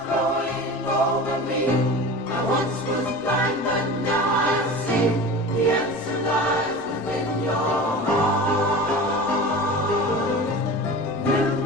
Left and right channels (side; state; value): both; normal; correlation 0.33